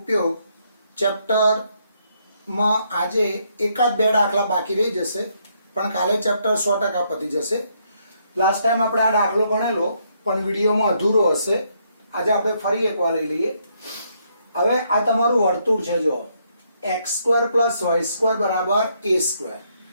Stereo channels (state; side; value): inverted; both; correlation -0.73